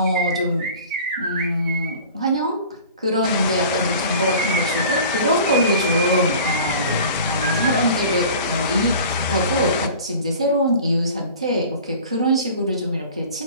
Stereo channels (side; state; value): both; inverted; correlation -0.42